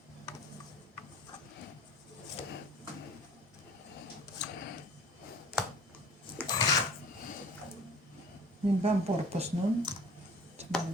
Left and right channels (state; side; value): normal; both; correlation 0.47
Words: Yun ba ang purpose nun? Saan